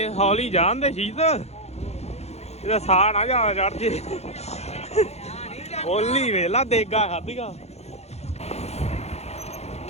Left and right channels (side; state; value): right; late; 0.31 ms